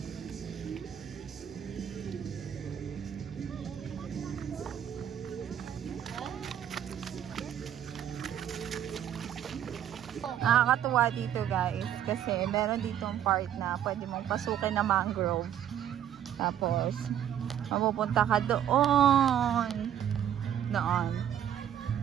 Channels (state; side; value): quieter; left; 10.2 dB